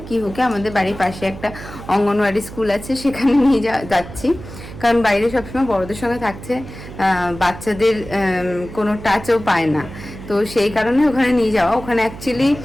কিহুকে আমাদের বাড়ির পাশে একটা অঙ্গনওয়াড়ি স্কুল আছে, সেখানে নিয়ে যাচ্ছি। কারণ বাইরে সবসময় বড়দের সঙ্গে থাকছে, বাচ্চাদের কোনো টাচও পায় না। তো সেই কারণে ওখানে নিয়ে যাওয়া। ওখানে অ্যাকচুয়ালি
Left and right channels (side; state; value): right; noise; hum, 14 dB below the sound